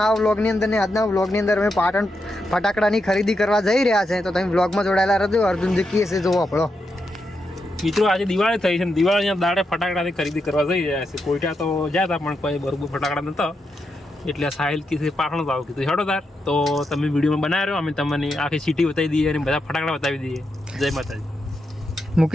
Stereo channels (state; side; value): normal; both; correlation 0.84